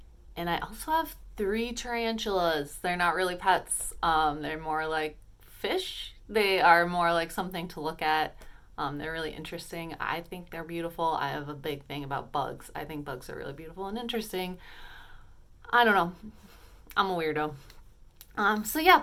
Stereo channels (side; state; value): both; identical; correlation 1.00